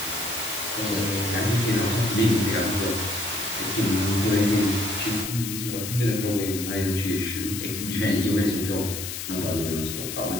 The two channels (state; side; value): noise; left; hiss, 6 dB below the sound